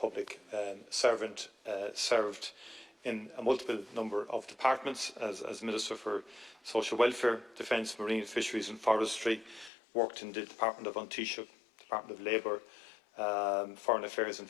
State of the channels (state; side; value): drops out; right; at 9.7 s